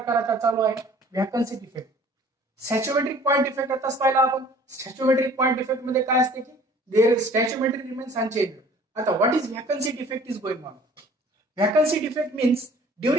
आता चालू आहे vacancy defect. Stoichiometric point defect आताच पाहिला आपण. सॅच्युमेट्रिक पॉइंट डिफेक्ट मध्ये काय असते की देअर स्टॅच्युमेट्री रिमेन्स अनचेंज्ड. आता what is vacancy defect is going on. Vacancy defect means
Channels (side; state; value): both; normal; correlation 0.51